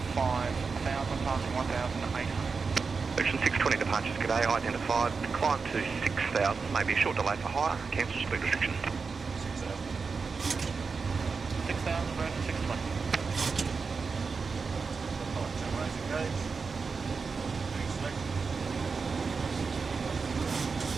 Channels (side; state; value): left; quieter; 4.9 dB